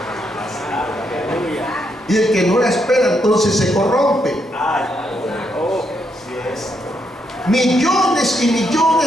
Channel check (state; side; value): normal; both; correlation 0.78